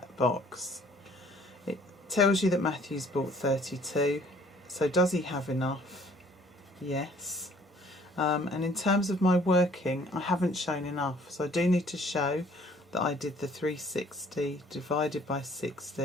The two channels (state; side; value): normal; both; correlation 0.57